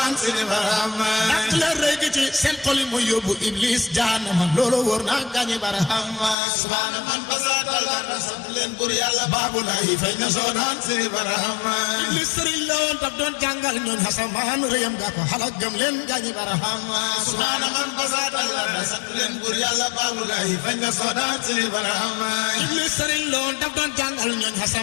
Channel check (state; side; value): drops out; right; at 6.4 s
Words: seeni barahama dak leen rëy ci seen xol yi mooy yóbbu iblis jaanama loolu wóor na gaañi barahama subhaana man basat talarda sant leen buur yàlla baabu laay fay na sodaan seeni barahama iblis sëriñ la woon daf doon jàngal ñooñ xasamaan rëyam gaa ko xalak gëm leen gaañi barahama subhaana man basat talarda sant leen buur yàlla baabu laay fay na sodaan seeni barahama iblis sëriñ la woon daf doon jàngal ñooñ